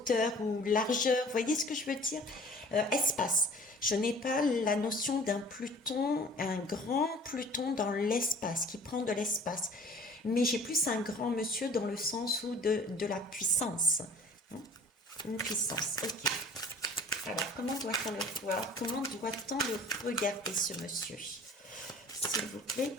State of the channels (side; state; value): both; normal; correlation 0.48